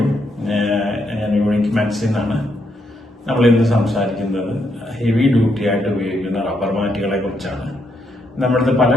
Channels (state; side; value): normal; both; correlation 0.77